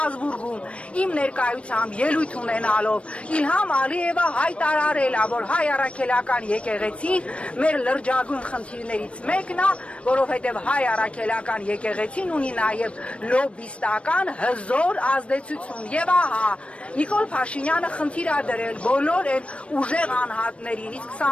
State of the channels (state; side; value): late; right; 0.061 ms